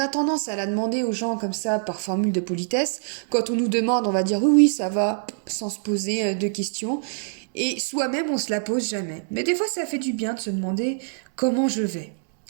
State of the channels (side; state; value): left; silent; digital silence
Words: tendance à la demander aux gens comme ça par formule de politesse. Quand on nous demande, on va dire oui, oui, ça va, sans se poser de questions. Et soi-même, on se la pose jamais. Mais des fois, ça fait du bien de se demander comment je vais.